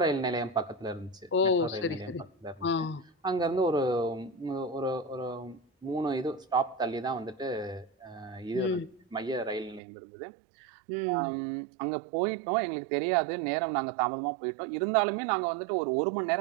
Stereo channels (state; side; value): drops out; left; at 9.8 s